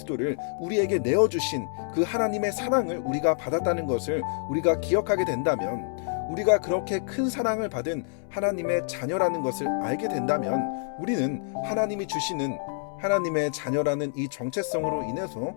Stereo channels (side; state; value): right; silent; 60 dB below the other